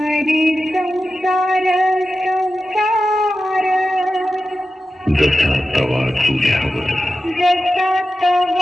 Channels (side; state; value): both; normal; correlation 0.92